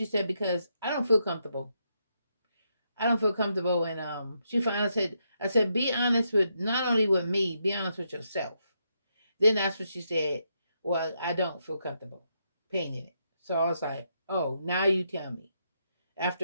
said, because I don't feel comfortable. I don't feel comfortable. And she finally said, I said, be honest with, not only with me, be honest with yourself. Then that's what she said, well, I don't feel comfortable painting it. So I was like, oh, now you tell me.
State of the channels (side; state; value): both; inverted; correlation -0.80